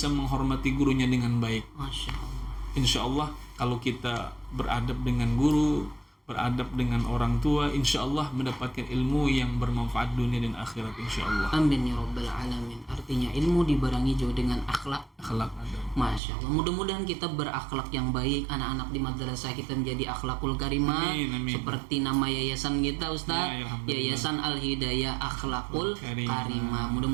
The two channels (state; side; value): drops out; left; at 16.2 s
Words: menghormati gurunya dengan baik. Masya Allah. Insya Allah kalau kita beradab dengan guru, beradab dengan orang tua, insya Allah mendapatkan ilmu yang bermanfaat dunia dan akhirat, insya Allah. Amin ya rabbal alamin. Artinya ilmu dibarengi juga dengan akhlak. Akhlak adab. Masya Allah. Mudah-mudahan kita berakhlak yang baik, anak-anak di madrasah kita menjadi akhlakul karimah. Amin, amin. Seperti nama yayasan kita, Ustaz, Ya, alhamdulillah. Yayasan Al-Hidayah Akhlakul Karimah.